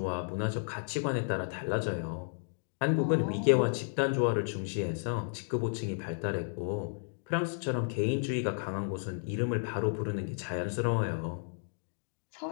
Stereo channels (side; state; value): right; silent; digital silence